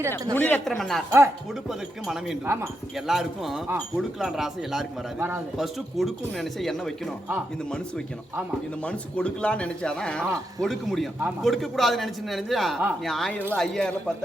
முனிரத்னம் அண்ணார். கொடுப்பதற்கு மனம் வேண்டும். எல்லாருக்கும் கொடுக்கலான்ற ஆசை எல்லாருக்கும் வராது. ஃபர்ஸ்ட் கொடுக்கும் நினைச்சா என்ன வைக்கணும்? இந்த மனசு வைக்கணும். இந்த மனசு கொடுக்கலாம்னு நினைச்சாதான் கொடுக்க முடியும். கொடுக்க கூடாது நினைச்சா நீ 1000 5000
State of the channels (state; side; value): normal; both; correlation 0.84